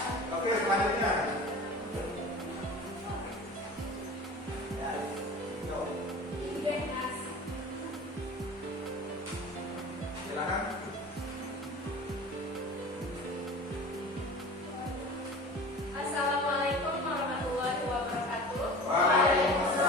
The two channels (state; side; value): normal; both; correlation 0.38